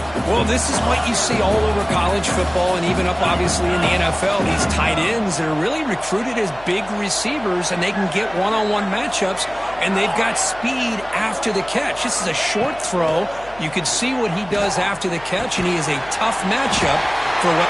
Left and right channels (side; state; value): left; noise; hum, 21 dB below the sound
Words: Well, this is what you see all over college football and even up, obviously, in the NFL. These tight ends, they're really recruited as big receivers, and they can get one-on-one matchups, and they've got speed after the catch. This is a short throw. You can see what he does after the catch, and he is a tough matchup for what...